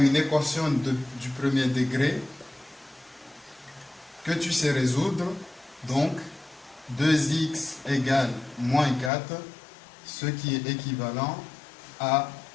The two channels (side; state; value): right; drops out; at 9.1 s